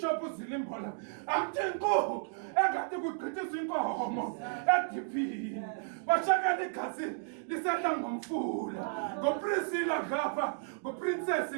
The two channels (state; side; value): silent; left; digital silence